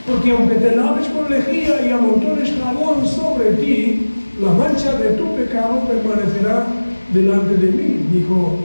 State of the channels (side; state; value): both; inverted; correlation -1.00